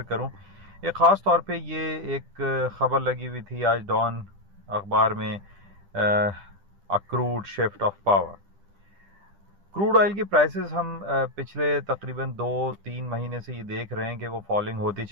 करूं। एक ख़ास तौर पे ये एक ख़बर लगी हुई थी आज डॉन अखबार में, accrued shift of power. Crude oil की प्राइसेस हम पिछले तकरीबन 2-3 महीने से ये देख रहे हैं कि वो फॉलिंग होती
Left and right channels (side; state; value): left; late; 10 ms